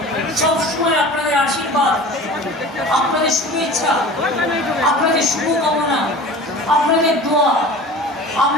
সবসময় আপনাদের আশীর্বাদ, আপনাদের শুভেচ্ছা, আপনাদের শুভকামনা, আপনাদের দোয়া,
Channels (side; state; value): both; normal; correlation 0.39